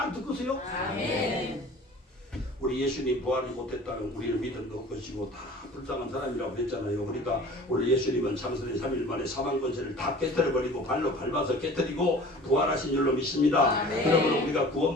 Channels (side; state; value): both; normal; correlation 0.44